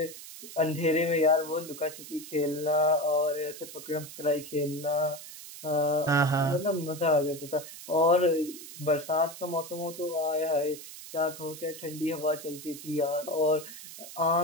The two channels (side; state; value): right; noise; hiss, 14 dB below the sound